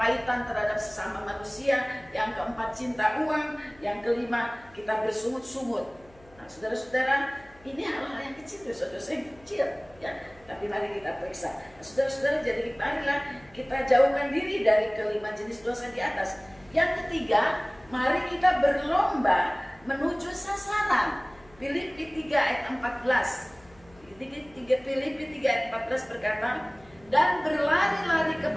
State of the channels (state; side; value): noise; left; hum, 27 dB below the sound